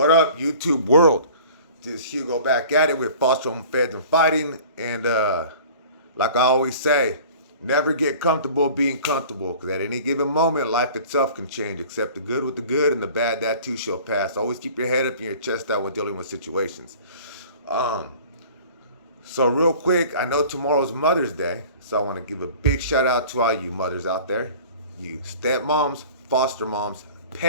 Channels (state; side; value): inverted; both; correlation -0.45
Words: up, YouTube world? This Hugo back at it with Foster Home Feds and Fighting. And like I always say, never get comfortable being comfortable because at any given moment, life itself can change. Accept the good with the good and the bad, that too shall pass. Always keep your head up and your chest out when dealing with situations. Um, so, real quick, I know tomorrow's Mother's Day. So, I want to give a big shout out to all you mothers out there. You stepmoms, foster moms,